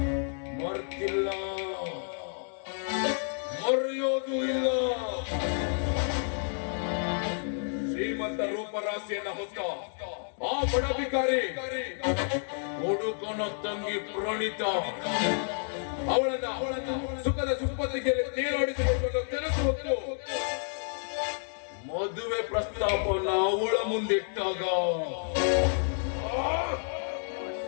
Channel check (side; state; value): right; silent; digital silence